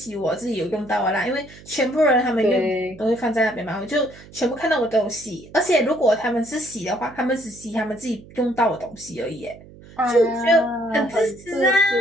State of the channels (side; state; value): right; noise; hum, 21 dB below the sound